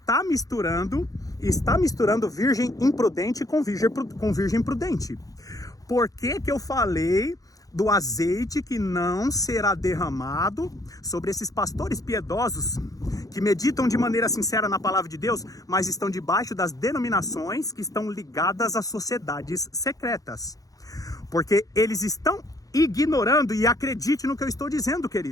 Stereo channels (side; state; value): right; late; 0.17 ms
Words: misturando virgem imprudente com virgem prudente. Por que eu falei do azeite que não será derramado sobre esses pastores piedosos que meditam de maneira sincera na palavra de Deus, mas estão debaixo das denominações que estão ligadas às sociedades secretas? Porque eles estão ignorando, e acredite no que eu estou dizendo,